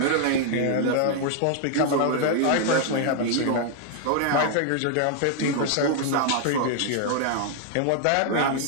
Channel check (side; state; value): both; different; correlation 0.00